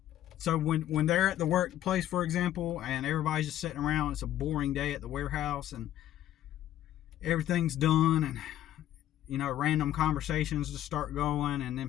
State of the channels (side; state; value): right; quieter; 12.5 dB